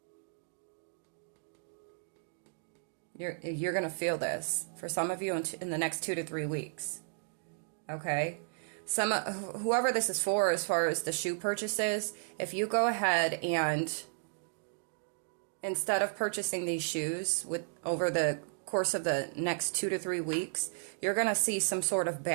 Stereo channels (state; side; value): silent; left; digital silence